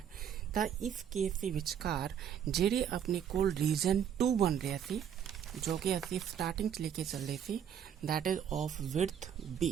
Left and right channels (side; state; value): left; quieter; 8.8 dB